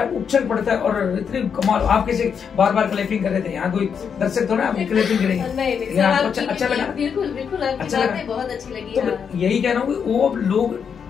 उछल पड़ता है। और इतनी कमाल, आप कैसे बार बार क्लैपिंग कर रहे थे, यहाँ कोई दर्शक थोड़ा आपकी क्लैपिंग करेंगे। अच्छा लगा? बिल्कुल बिल्कुल, अच्छा लगा, बहुत अच्छी लगी। तो यही कह रहा हूँ कि वो लोग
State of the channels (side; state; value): right; quieter; 6.9 dB